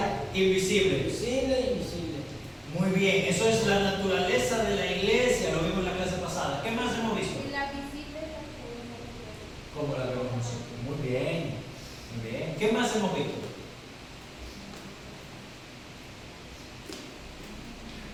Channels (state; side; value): identical; both; correlation 1.00